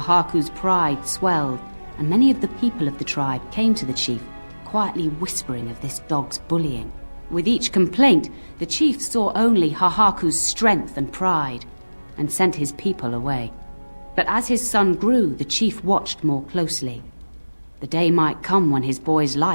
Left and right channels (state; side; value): inverted; both; correlation -1.00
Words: pride swelled, and many of the people of the tribe came to the chief, quietly whispering of this dog's bullying. With each complaint, the chief saw only Hahaku's strength and pride, and sent his people away. But as his son grew, the chief watched more closely. The day might come when his boy's